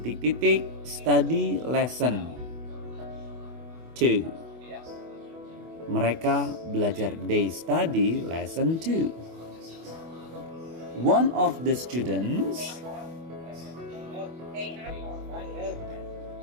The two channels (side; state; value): left; late; 24 ms